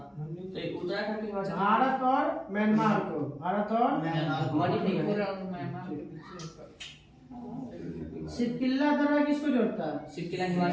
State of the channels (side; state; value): both; identical; correlation 1.00